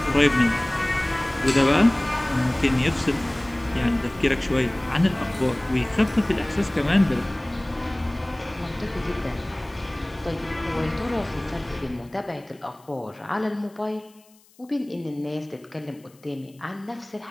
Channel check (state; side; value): noise; left; hiss, 30 dB below the sound